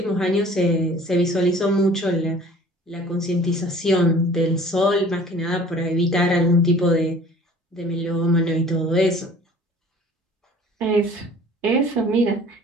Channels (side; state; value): both; normal; correlation 0.49